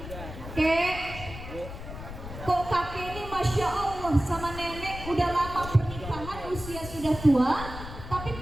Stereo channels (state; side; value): noise; left; rumble, 10 dB below the sound